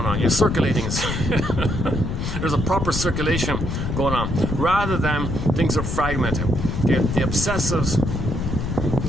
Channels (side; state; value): left; noise; rumble, 3 dB below the sound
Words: on. You're circulating. There's a proper circulation going on, rather than things are fragmented. Okay, the obsessives